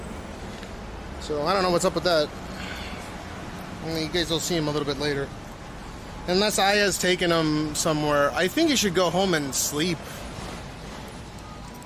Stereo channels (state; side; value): identical; both; correlation 1.00